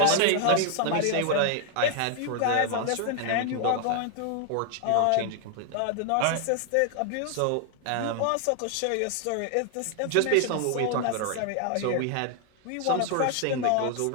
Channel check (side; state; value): both; different; correlation 0.00